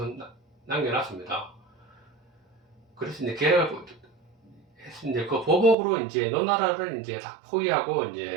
남겨놨습니다. 그래서 이제 계획을 이제 그 보복으로 이제 노나라를 이제 다 포위하고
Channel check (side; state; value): left; drops out; at 5.8 s